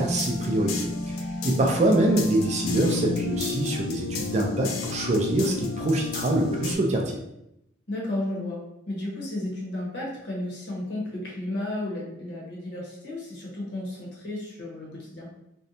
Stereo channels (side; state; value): both; normal; correlation 0.60